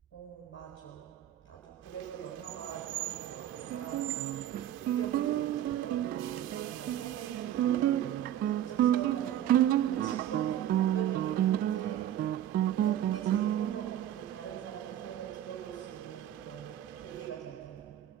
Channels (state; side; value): quieter; left; 11.6 dB